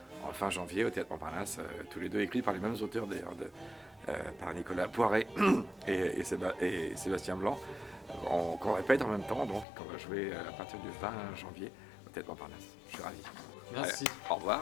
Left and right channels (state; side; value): drops out; right; at 9.7 s